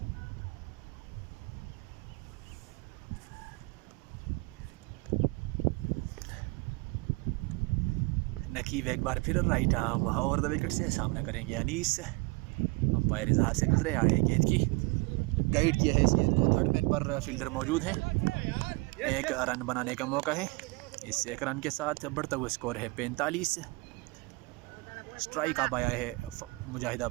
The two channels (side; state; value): left; quieter; 26.2 dB